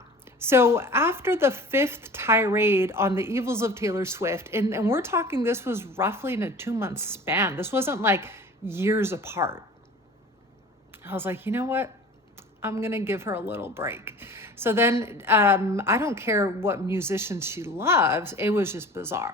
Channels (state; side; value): normal; both; correlation 0.42